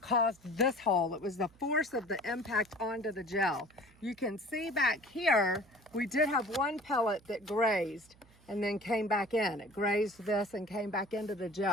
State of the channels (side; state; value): right; noise; hum, 27 dB below the sound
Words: caused this hole. It was the force of the impact onto the gel. You can see back here, we did have one pellet that grazed and then came back in. It grazed this and came back into the